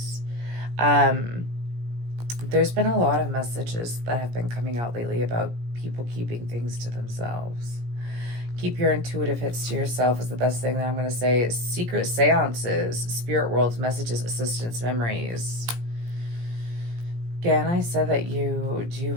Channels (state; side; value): late; left; 17 ms